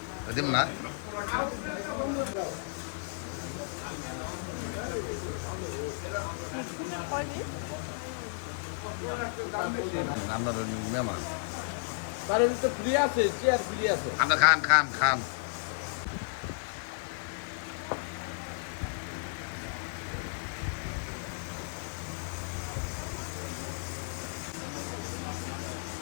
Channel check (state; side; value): silent; right; 56 dB below the other